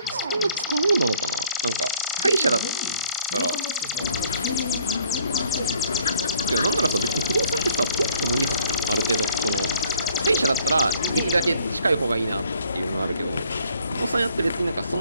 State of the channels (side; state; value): both; inverted; correlation -0.57